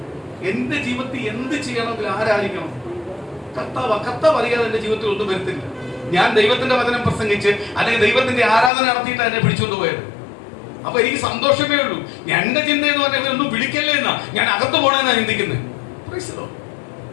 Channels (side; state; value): right; drops out; at 8.7 s